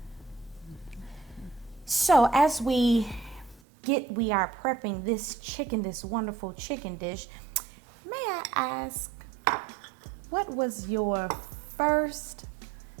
So as we are prepping this chicken, this wonderful chicken dish, may I ask, what was your first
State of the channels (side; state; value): left; drops out; at 3.6 s